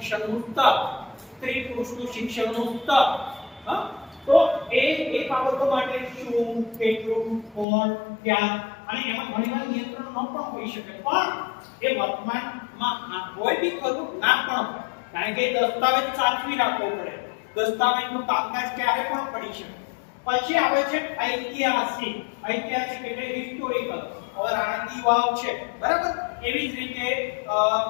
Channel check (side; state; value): right; drops out; at 7.7 s